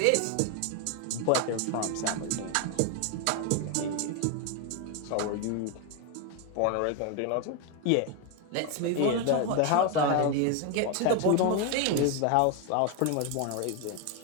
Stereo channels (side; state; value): both; different; correlation 0.01